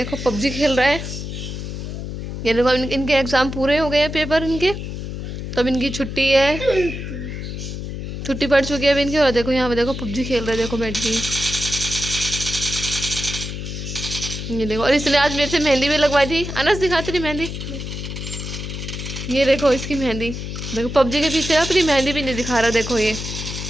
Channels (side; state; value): left; noise; hum, 6 dB below the sound